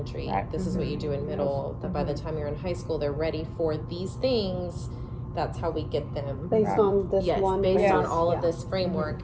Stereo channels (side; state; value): both; identical; correlation 1.00